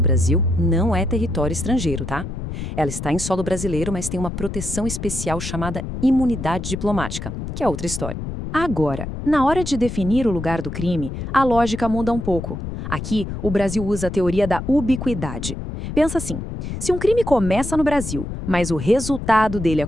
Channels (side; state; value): left; noise; rumble, 7 dB below the sound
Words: Brasil não é território estrangeiro, tá? Ela está em solo brasileiro, mas tem uma proteção especial chamada imunidade diplomática, que é outra história. Agora, na hora de definir o lugar do crime, a lógica muda um pouco. Aqui, o Brasil usa a teoria da ubiquidade. Pensa assim: se um crime começa no Brasil, mas o resultado dele